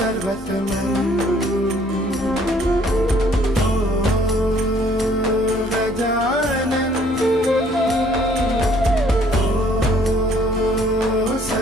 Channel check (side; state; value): both; normal; correlation 0.61